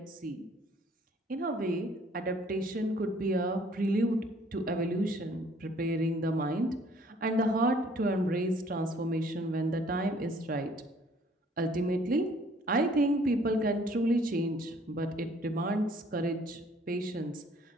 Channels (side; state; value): both; normal; correlation 0.59